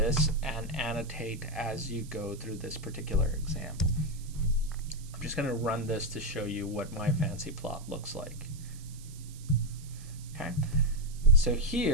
and annotate as you go through this particular example. I'm just going to run this to show you what my fancy plot looks like. Okay, so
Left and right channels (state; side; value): noise; right; hiss, 20 dB below the sound